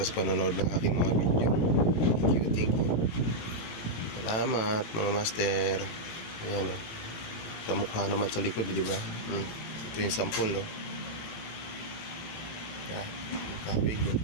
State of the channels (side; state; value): right; late; 17 ms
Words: sa panonood ng aking mga video. Thank you. Salamat mga master. Ayan o. Kamukha naman sa likod, di ba? Ito yung sample, no? Yan. Kabig, no?